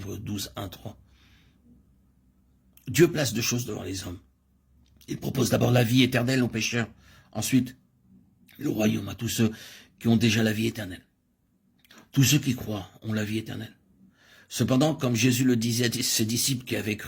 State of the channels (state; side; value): identical; both; correlation 1.00